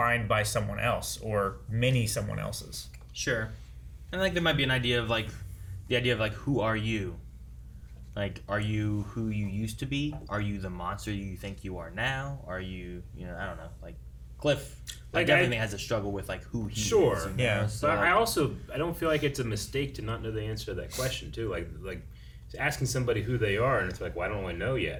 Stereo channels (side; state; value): both; identical; correlation 1.00